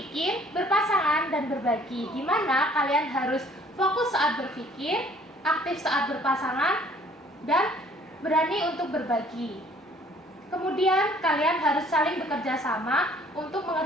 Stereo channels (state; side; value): normal; both; correlation 0.57